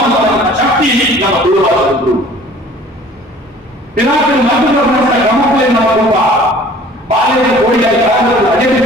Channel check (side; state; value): both; normal; correlation 0.50